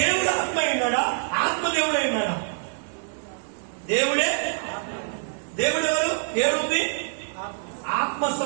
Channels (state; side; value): silent; left; digital silence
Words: ఆత్మ అయినాడా? ఆత్మ దేవుడు అయినాడా? దేవుడే. దేవుడు ఎవరు? ఏ రూపి?